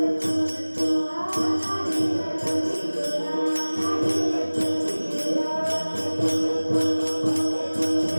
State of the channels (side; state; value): both; inverted; correlation -1.00